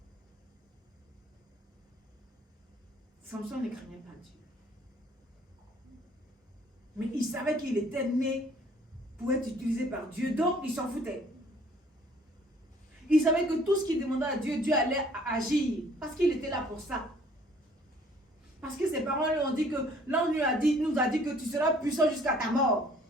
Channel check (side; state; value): both; normal; correlation 0.58